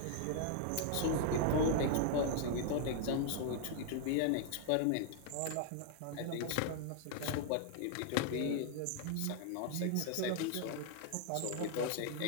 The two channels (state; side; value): different; both; correlation 0.00